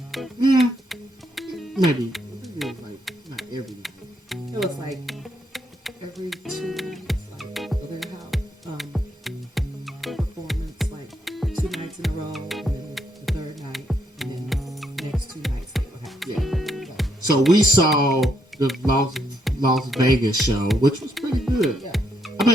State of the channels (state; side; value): normal; both; correlation 0.76